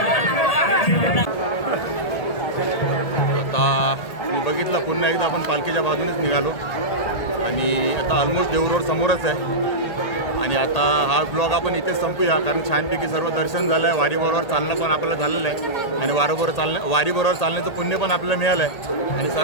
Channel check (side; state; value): right; late; 1.8 ms